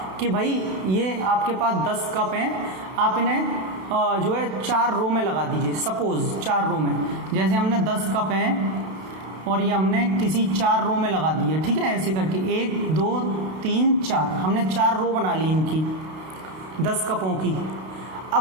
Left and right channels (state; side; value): late; left; 32 ms